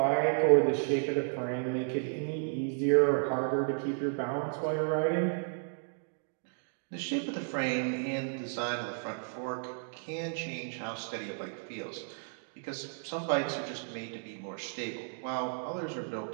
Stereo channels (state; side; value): silent; left; digital silence